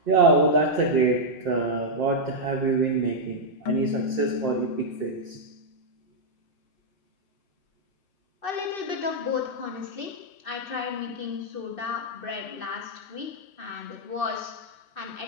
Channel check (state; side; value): late; right; 2.6 ms